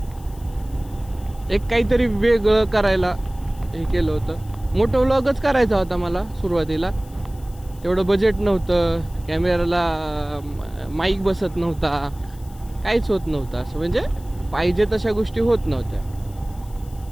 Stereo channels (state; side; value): noise; left; hiss, 25 dB below the sound